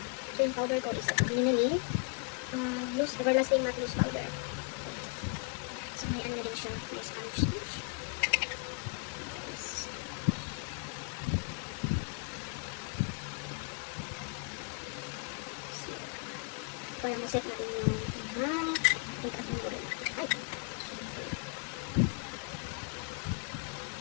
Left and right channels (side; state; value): right; quieter; 37.1 dB